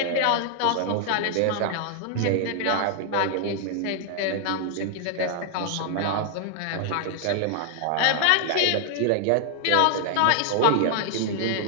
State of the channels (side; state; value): both; different; correlation 0.00